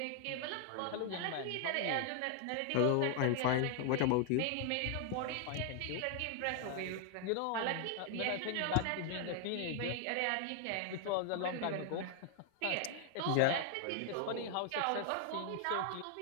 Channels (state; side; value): different; both; correlation 0.00